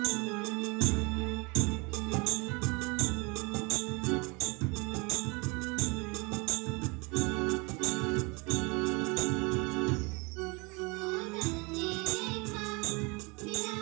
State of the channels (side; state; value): left; quieter; 28.4 dB